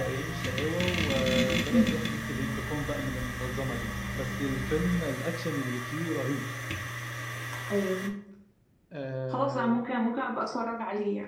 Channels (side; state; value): both; identical; correlation 1.00